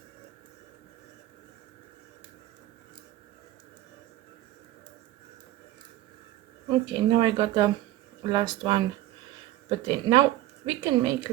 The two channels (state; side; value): quieter; left; 15.0 dB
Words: Okay, now I got the last one put in. Now we can make